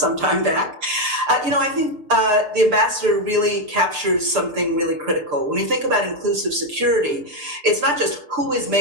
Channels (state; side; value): late; left; 6.6 ms